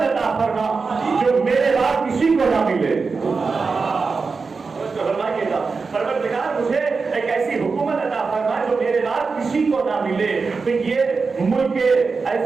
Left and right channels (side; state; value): left; quieter; 4.6 dB